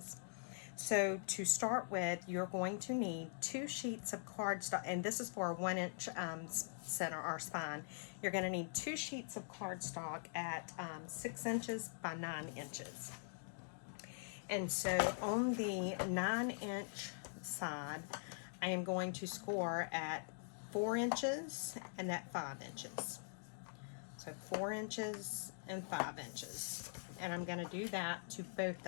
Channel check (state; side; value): silent; right; digital silence